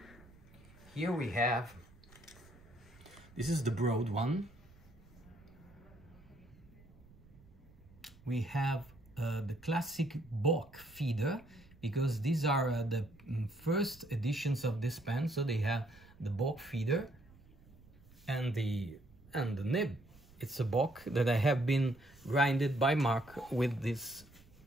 Here we have, this is the broad one. We have the classic Bock feeder, because these are the first editions of this pen, so they have the Bock feeder and the nib. It's a Bock that I have been grinded by Mark with this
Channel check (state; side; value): noise; right; rumble, 24 dB below the sound